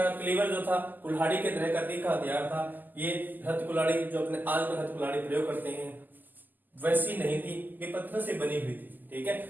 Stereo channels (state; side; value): late; left; 0.087 ms